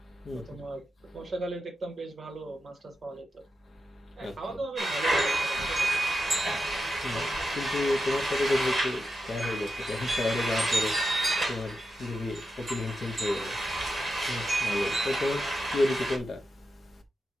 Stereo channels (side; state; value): both; normal; correlation 0.88